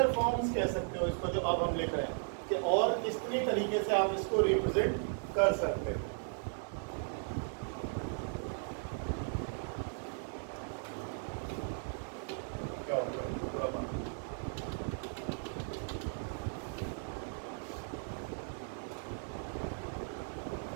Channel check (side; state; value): left; silent; 53 dB below the other